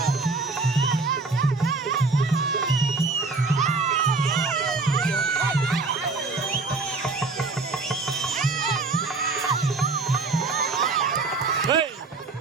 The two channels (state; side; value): quieter; left; 3.8 dB